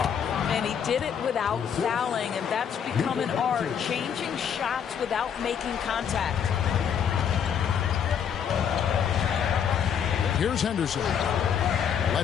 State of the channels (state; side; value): quieter; right; 8.0 dB